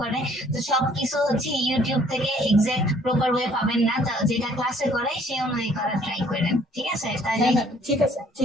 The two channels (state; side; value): normal; both; correlation 0.60